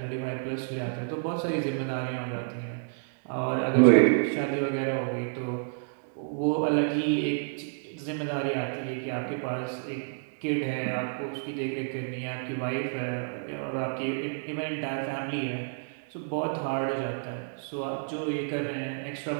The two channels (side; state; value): left; silent; digital silence